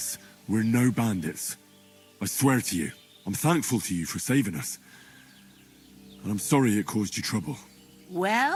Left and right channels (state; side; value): identical; both; correlation 1.00